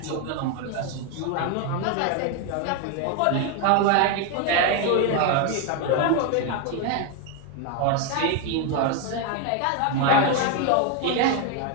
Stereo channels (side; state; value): both; different; correlation 0.01